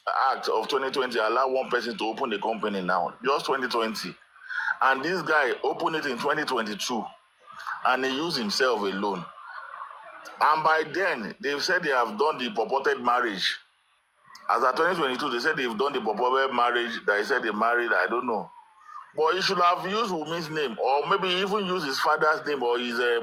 Act of 2020 allow one person to open the company now, just 2020. And this guy opened it in 2022, and he used himself alone. And by then, they've said they have done the purported marriage. As of 2022, they said they've done the purported marriage. They said they married, I don't know. But he should have used Wumi's name, or maybe even use his father's name, or his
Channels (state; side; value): identical; both; correlation 1.00